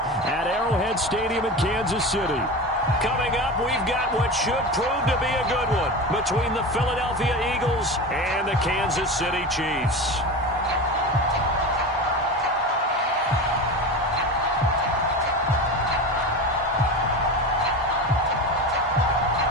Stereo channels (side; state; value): both; normal; correlation 0.27